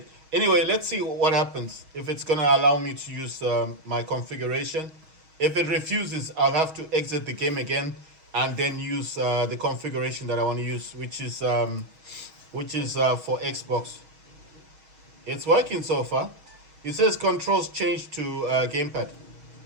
Anyway, let's see what happens if it's gonna allow me to use my configuration. If it refuses, I'll have to exit the game again and then use the configuration that I want to use, which is for Xbox. It's working so far. It says controls change to gamepad.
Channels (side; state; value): left; late; 6.3 ms